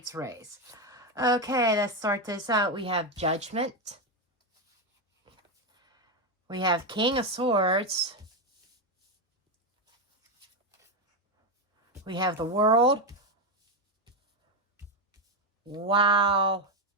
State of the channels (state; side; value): normal; both; correlation 0.08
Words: raise. Okay, let's start this out. We have Judgment. We have King of Swords. We have the World. Wow.